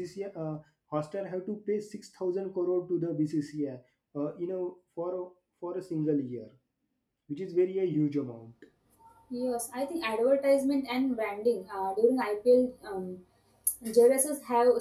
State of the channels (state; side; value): identical; both; correlation 1.00